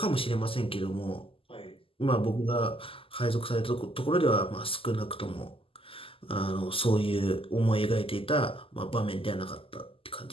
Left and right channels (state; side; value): late; right; 0.26 ms